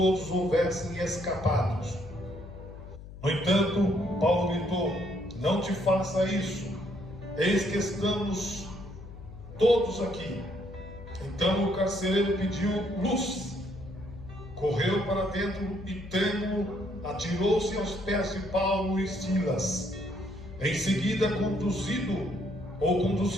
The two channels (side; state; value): left; noise; hum, 14 dB below the sound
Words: houvessem escapados. No entanto, Paulo gritou: não te faça isso, eis que estamos todos aqui. Então o carcereiro pediu luz, correu para dentro e, trêmulo, atirou-se aos pés de Paulo e Silas. Em seguida,